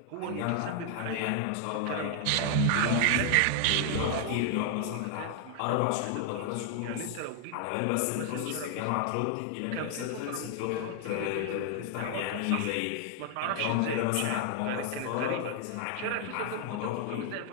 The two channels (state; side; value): different; both; correlation 0.00